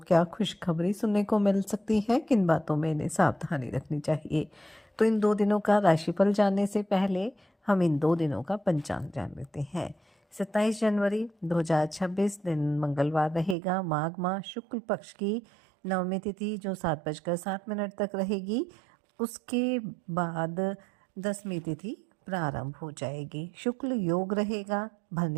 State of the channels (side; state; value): left; drops out; at 13.6 s